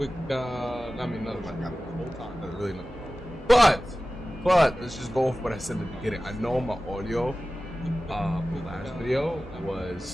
nothing about that the whole time. That's really nothing. But, let's just go off what I said in the beginning. I know my audio, for the last video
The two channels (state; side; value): normal; both; correlation 0.96